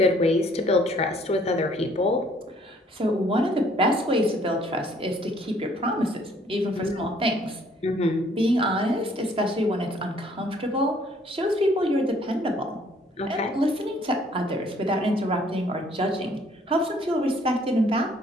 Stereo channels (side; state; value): both; normal; correlation 0.61